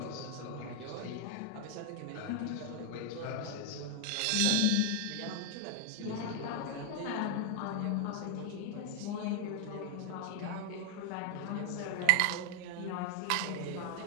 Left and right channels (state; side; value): different; both; correlation 0.00